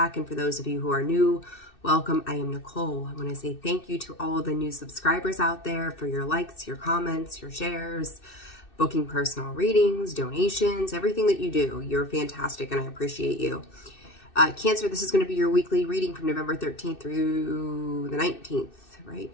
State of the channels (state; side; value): late; right; 2.6 ms